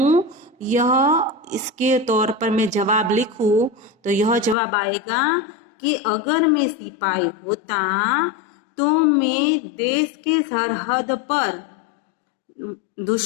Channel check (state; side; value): drops out; right; at 4.5 s